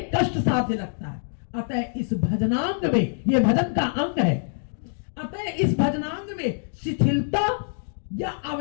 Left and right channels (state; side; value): silent; right; digital silence